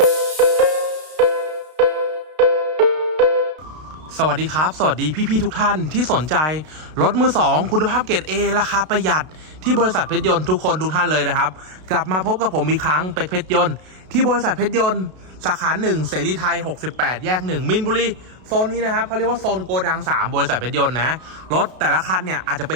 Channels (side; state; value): left; late; 32 ms